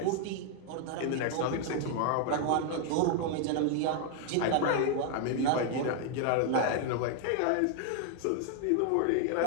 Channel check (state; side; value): different; both; correlation 0.00